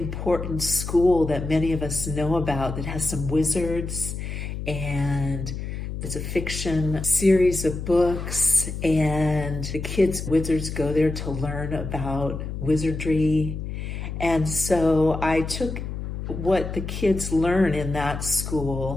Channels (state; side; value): noise; left; hum, 6 dB below the sound